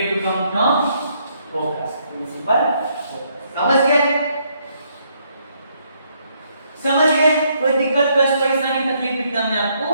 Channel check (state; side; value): inverted; both; correlation -0.72